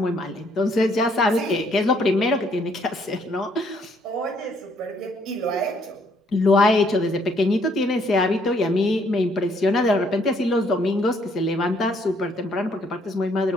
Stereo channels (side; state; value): both; normal; correlation 0.67